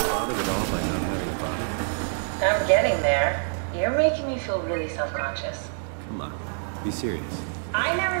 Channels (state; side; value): silent; left; 61 dB below the other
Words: bothered at all by not having a body? I'm getting there. You're making me feel really self-conscious. Come on, be serious. I